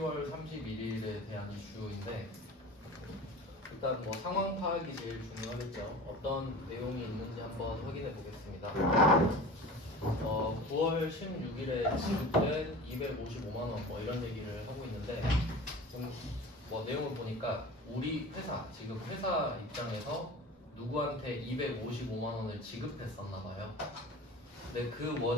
31일에 대한 이슈인데 일단 뭐 상황 파악이 제일 중요하겠죠. 어떤 내용이 있는지 한번 확인해 보겠습니다. 9월 16일에 지급된 255만 원 뭐 이런 얘기를 하고 있는데 좀 뭐 내용을 보니까 우리 회사 지금 회사 입장에서 누구한테 255만 원을 지급했었나 봐요. 근데 그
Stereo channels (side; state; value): both; normal; correlation 0.37